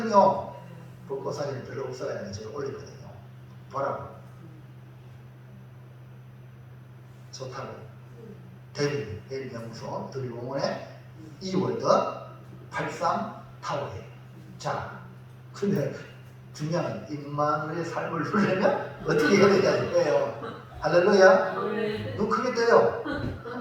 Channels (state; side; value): identical; both; correlation 1.00